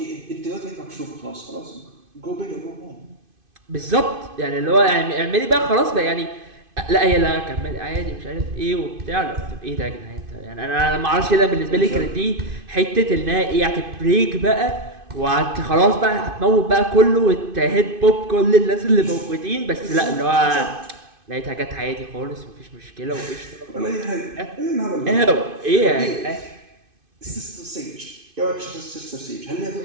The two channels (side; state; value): left; late; 2.5 ms